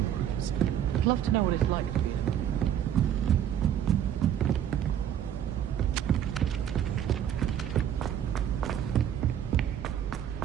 rooms? I'd love to know what it's like to be in a...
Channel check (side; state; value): left; quieter; 10.0 dB